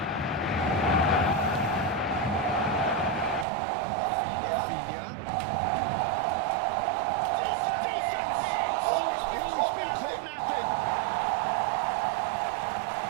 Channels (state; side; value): drops out; left; at 3.5 s